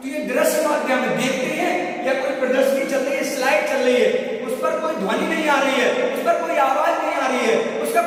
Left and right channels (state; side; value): identical; both; correlation 1.00